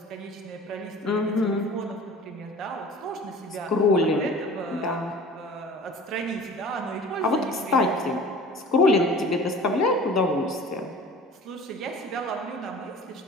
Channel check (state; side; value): normal; both; correlation 0.43